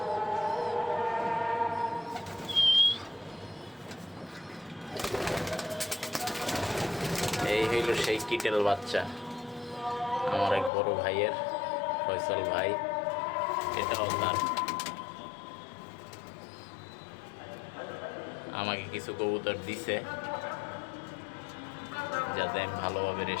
এই হইল সেই কিটেল বাচ্চা, আমার এক বড় ভাইয়ের, ফয়সাল ভাই। এটাও তার। আমাকে কিছু কবুতর দিছে যাতে আমি ভালোভাবে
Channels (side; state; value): right; drops out; at 10.7 s